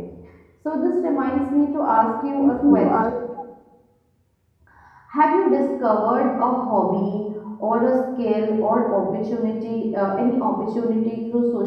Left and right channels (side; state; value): both; identical; correlation 1.00